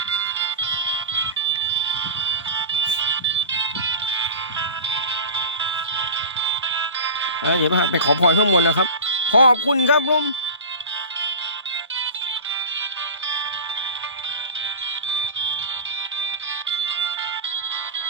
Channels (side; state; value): both; inverted; correlation -0.30